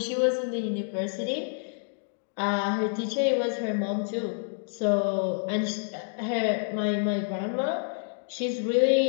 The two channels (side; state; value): right; silent; digital silence